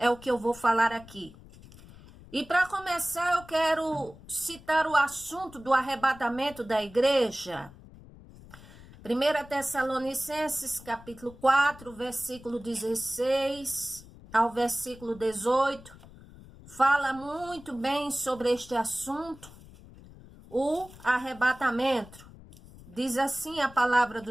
o que eu vou falar aqui. E para começar, eu quero citar o assunto do arrebatamento da igreja. 1 Tessalonicenses, capítulo 4, versículo 16 ao versículo 18, fala muito bem sobre este assunto, o arrebatamento. Diz assim a palavra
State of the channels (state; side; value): noise; left; rumble, 20 dB below the sound